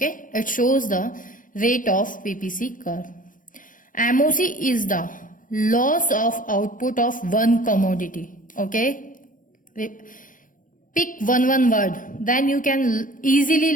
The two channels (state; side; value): late; right; 0.39 ms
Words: it shows the rate of PPC curve. MOC is the loss of output of one commodity. Okay, pick one word, then you can easily